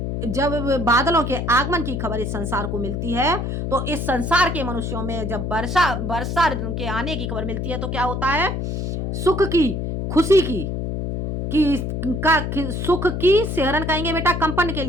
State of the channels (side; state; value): left; noise; hum, 3 dB below the sound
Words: जब बादलों के आगमन की खबर इस संसार को मिलती है तो इस संसार के मनुष्यों में जब वर्षा के आने की खबर मिलती है तो क्या होता है, सुख की, खुशी की सुख की सहरन कहेंगे बेटा कंपन के